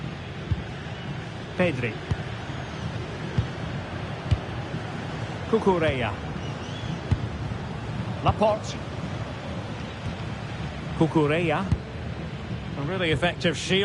Pedri. Cucurella. Laporte. Cucurella. A really effective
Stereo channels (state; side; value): identical; both; correlation 1.00